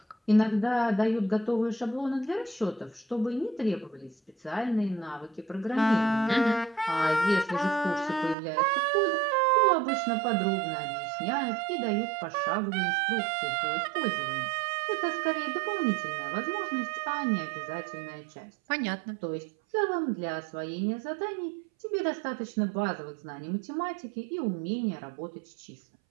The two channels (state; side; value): drops out; left; at 8.3 s